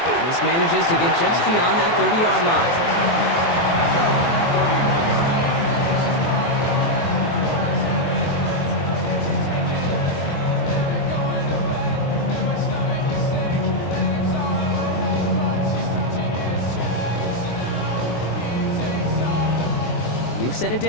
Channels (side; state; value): right; late; 23 ms